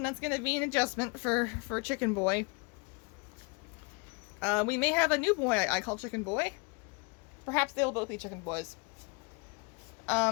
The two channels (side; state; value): right; quieter; 30.8 dB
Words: that's gonna be an adjustment for Chicken Boy. We may have a new boy I call Chicken Boy. Perhaps they will both be Chicken Boys.